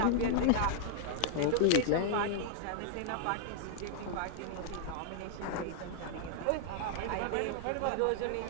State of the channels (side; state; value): both; different; correlation 0.00